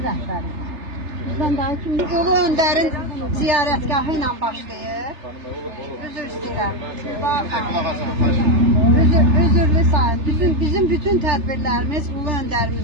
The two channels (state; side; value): late; left; 3.3 ms